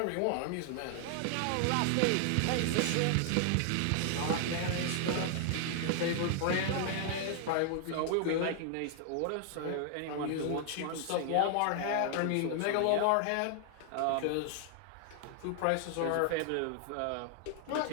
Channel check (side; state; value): both; different; correlation 0.00